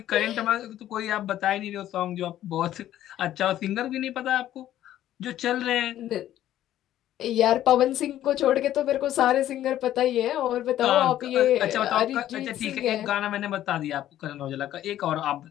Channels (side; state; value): right; quieter; 12.6 dB